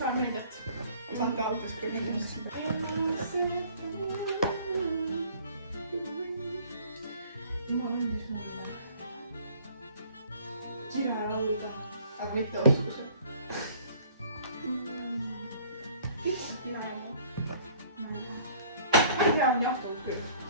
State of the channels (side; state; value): both; inverted; correlation -0.54